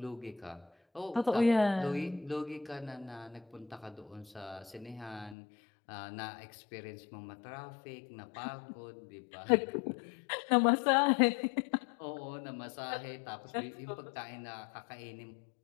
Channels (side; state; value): right; drops out; at 5.4 s